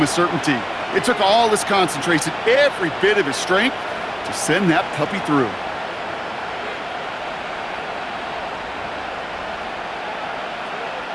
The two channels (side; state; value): both; identical; correlation 1.00